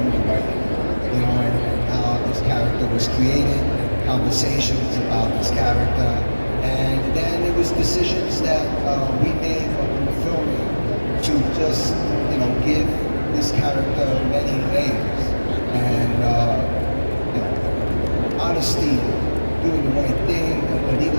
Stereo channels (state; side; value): inverted; both; correlation -1.00